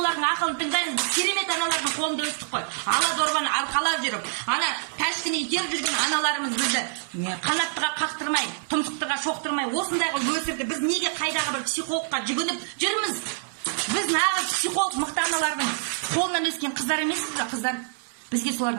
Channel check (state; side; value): silent; left; 56 dB below the other